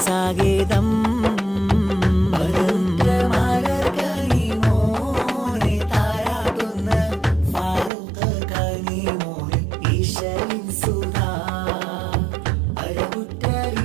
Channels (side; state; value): left; drops out; at 7.9 s